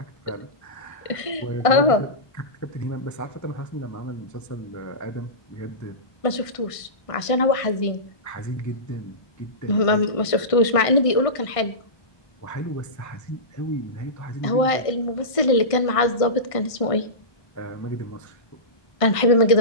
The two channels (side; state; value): right; late; 1.5 ms